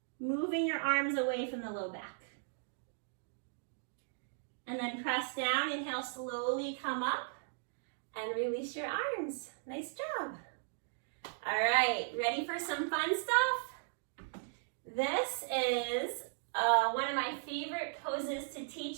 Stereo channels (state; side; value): silent; left; digital silence